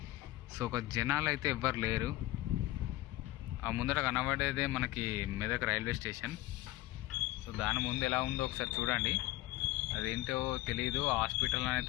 సో ఒక జనాలు అయితే ఎవ్వరు లేరు. ఆ ముందర కనబడేదే మనకి మెదక్ రైల్వే స్టేషన్. సో దాని ముందు ఎలా ఉందో ఒకసారి చూడండి. అదేంటో తెలియదు, హాస్పిటల్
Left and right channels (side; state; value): right; quieter; 17.1 dB